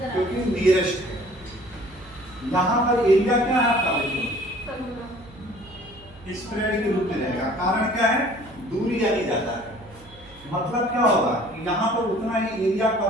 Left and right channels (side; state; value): right; noise; hum, 23 dB below the sound